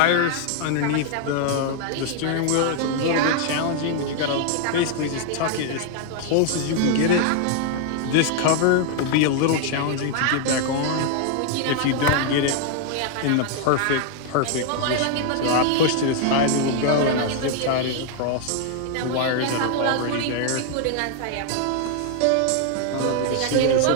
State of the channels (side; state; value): both; different; correlation 0.00